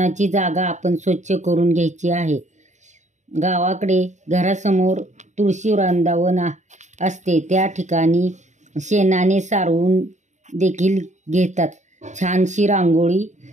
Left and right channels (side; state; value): left; late; 0.34 ms